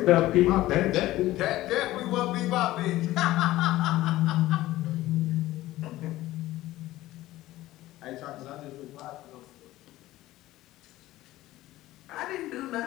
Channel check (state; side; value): quieter; right; 16.3 dB